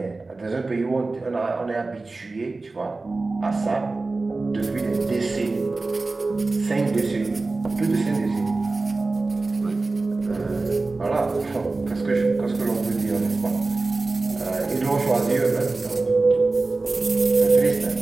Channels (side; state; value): left; quieter; 3.5 dB